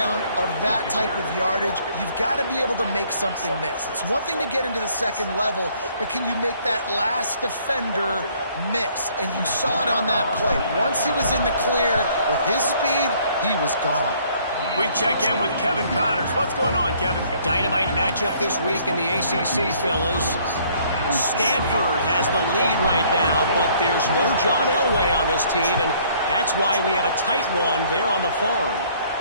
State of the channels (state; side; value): inverted; both; correlation -0.61